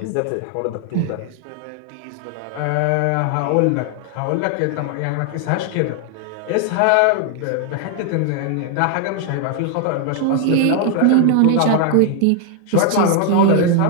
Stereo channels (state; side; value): different; both; correlation 0.00